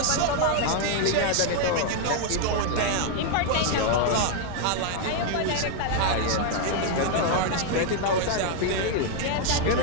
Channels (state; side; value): different; both; correlation 0.00